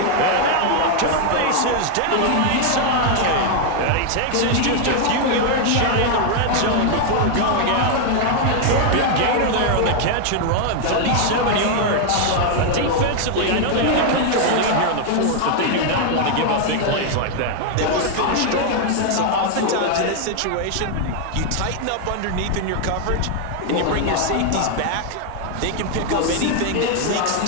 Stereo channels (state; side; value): different; both; correlation 0.00